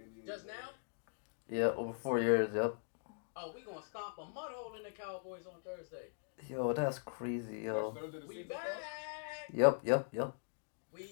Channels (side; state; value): right; silent; digital silence